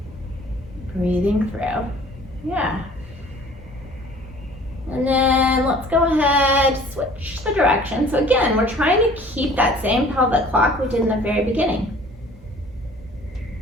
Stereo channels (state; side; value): normal; both; correlation 0.50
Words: Breathing through. Yeah. And then let's go ahead, switch the direction. So again, we're trying to keep that same pelvic clock we did in the very beginning.